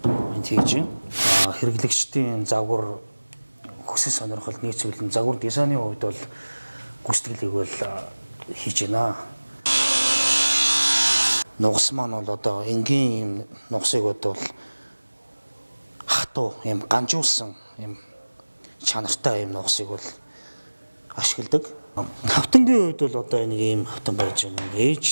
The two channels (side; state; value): both; inverted; correlation -1.00